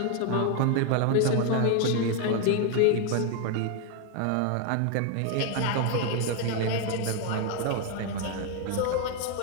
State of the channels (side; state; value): both; different; correlation 0.01